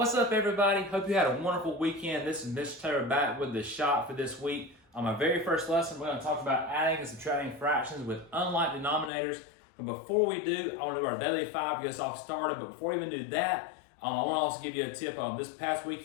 up, everybody? Hope you had a wonderful weekend. This is Mr. Taylor back with the shot for this week. On my very first lesson, we're going to talk about adding and subtracting fractions with unlike denominators. But before we do, I want to do our daily five to get us all started. But before we even do that, I want to also give you a tip. This past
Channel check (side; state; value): right; drops out; at 9.1 s